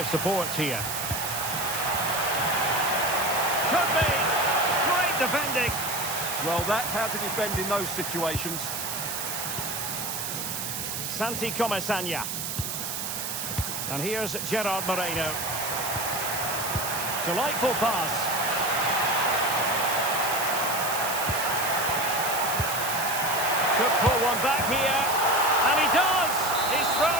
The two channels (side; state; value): right; noise; hiss, 4 dB below the sound